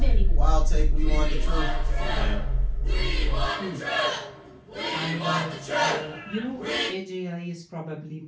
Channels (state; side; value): identical; both; correlation 1.00